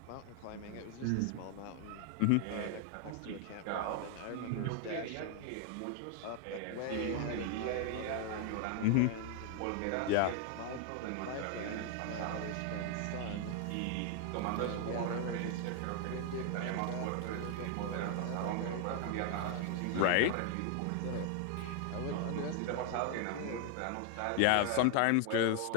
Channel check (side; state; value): both; different; correlation 0.00